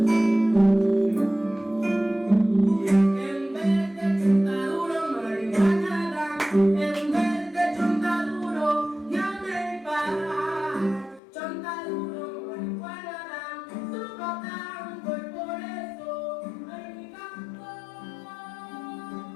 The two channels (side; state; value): right; drops out; at 11.2 s